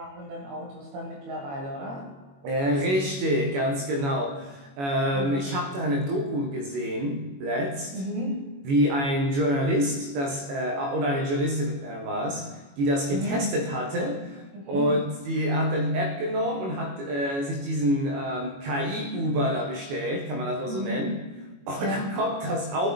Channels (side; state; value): left; late; 22 ms